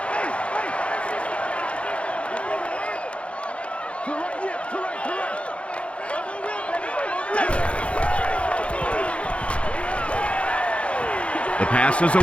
The pass is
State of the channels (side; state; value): right; late; 0.061 ms